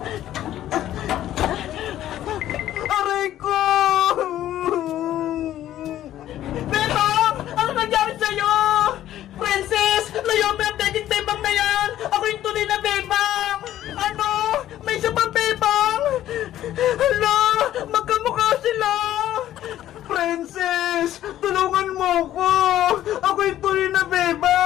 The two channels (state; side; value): quieter; right; 12.7 dB